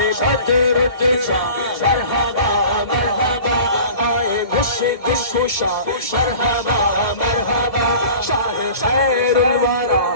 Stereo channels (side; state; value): right; late; 1.7 ms